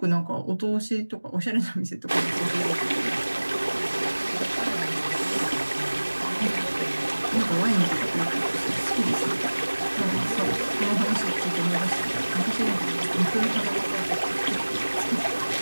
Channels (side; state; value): both; inverted; correlation -1.00